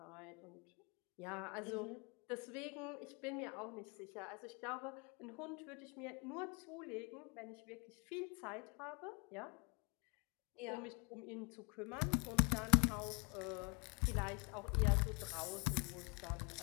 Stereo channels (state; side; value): quieter; right; 33.1 dB